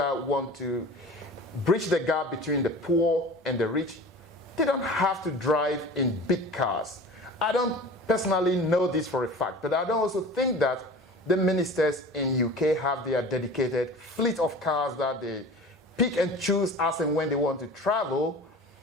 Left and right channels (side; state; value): both; normal; correlation 0.39